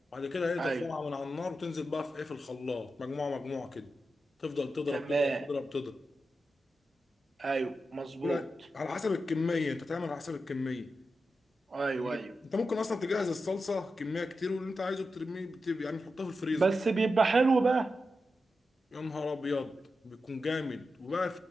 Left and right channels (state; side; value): normal; both; correlation 0.89